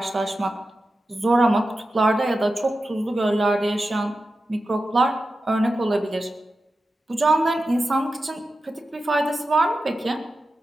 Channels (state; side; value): normal; both; correlation 0.92